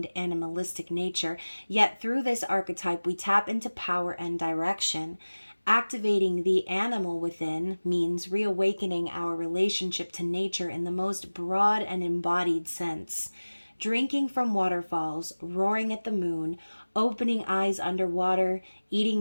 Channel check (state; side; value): inverted; both; correlation -1.00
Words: animalistic nature, yet through this archetype we tap into power and direction. Activating the animal within means reawakening our relationship to nature in the most broad and embodied sense. Drinking from waterfalls, roaring at the moon, opening eyes underwater,